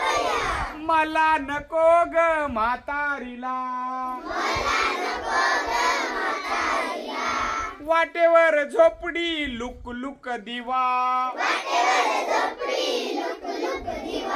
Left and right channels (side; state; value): both; identical; correlation 1.00